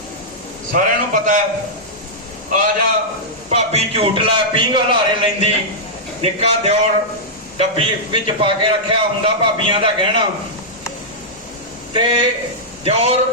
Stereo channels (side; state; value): both; normal; correlation -0.10